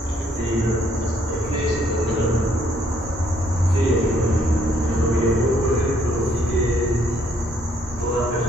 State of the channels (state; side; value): normal; both; correlation 0.68